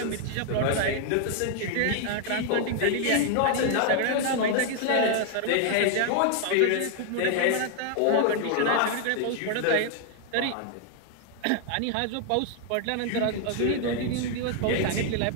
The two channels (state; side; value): different; both; correlation 0.00